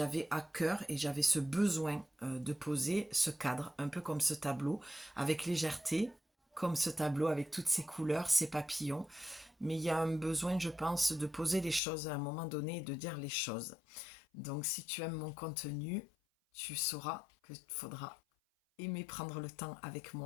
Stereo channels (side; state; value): right; drops out; at 11.8 s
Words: à cœur et j'avais ce besoin de poser ce cadre, un peu comme ce tableau, avec légèreté, comme ce tableau avec toutes ses couleurs, ses papillons. Mais il y a un besoin, je pense, de poser les choses à un moment donné et de dire les choses. Donc si tu aimes mon contenu, tu sauras qu'il faudra aimer prendre le temps avec